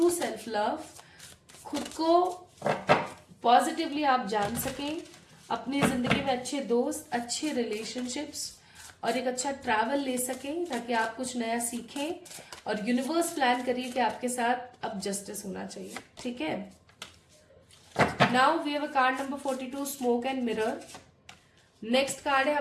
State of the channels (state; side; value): identical; both; correlation 1.00